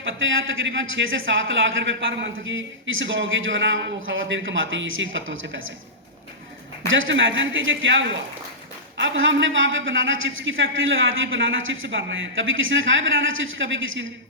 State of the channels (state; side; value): normal; both; correlation -0.16